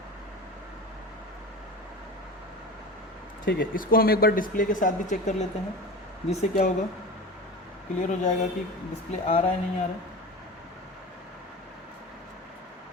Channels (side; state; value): both; normal; correlation 0.31